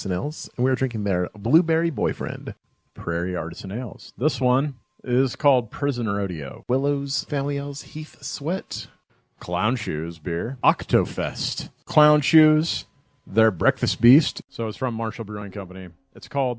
Ales. And we're drinking their Blueberry Boyfriend. Prairie Artisan Ales. This one is called Prison Rodeo. Willow's Family Ales Heath Sweat. Clown Shoes beer. Octofest. Clown Shoes. Their Breakfast Beast. So it's from Marshall Brewing Company. It's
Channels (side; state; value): both; identical; correlation 1.00